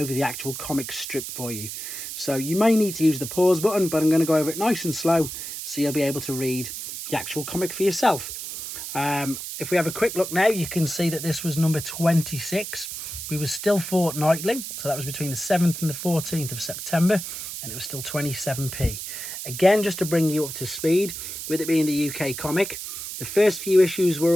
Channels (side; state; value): right; noise; hiss, 7 dB below the sound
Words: the actual comic strip for you. So you may need to use the pause button, but I'm going to go over it nice and slow so you'll be able to read the actual comic for yourself. If we have a quick look now, you can see that this was number 26. We were still fortnightly, so that was between the 7th and the 14th of September, and it was still 27p. Again, just to bring you up to speed, with it being the UK comic, the first few issues were